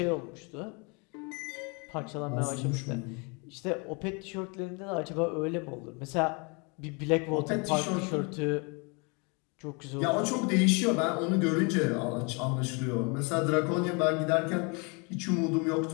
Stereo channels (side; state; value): right; quieter; 32.0 dB